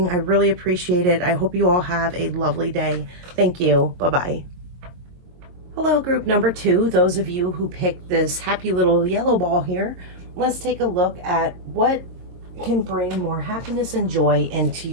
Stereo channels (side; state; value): left; late; 22 ms